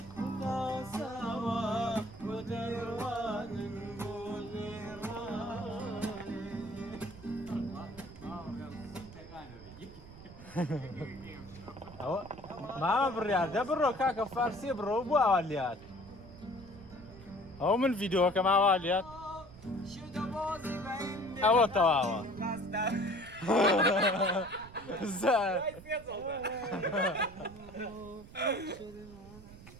تاساوە بۆ دەیڕوانن بۆ ئەوە مامە بڕیار دە بڕۆ کاکە فارسیە بڕۆ بۆ ئاوا لات ئەو من ڤیدۆکە ماوا لات ئەوە تەواوە زار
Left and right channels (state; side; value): noise; right; rumble, 18 dB below the sound